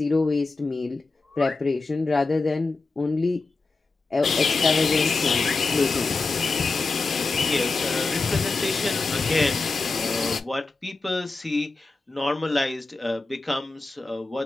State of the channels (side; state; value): right; quieter; 3.7 dB